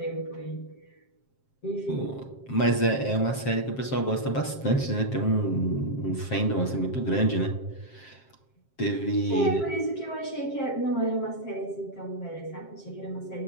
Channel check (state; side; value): late; right; 7.5 ms